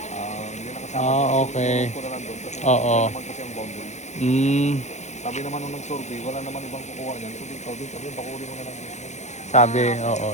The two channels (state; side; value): late; right; 0.33 ms